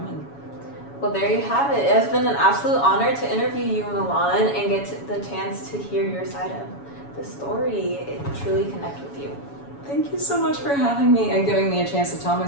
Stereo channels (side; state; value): right; late; 7.1 ms